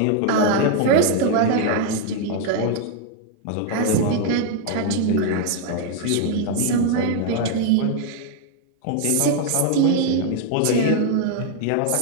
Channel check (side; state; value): both; different; correlation 0.00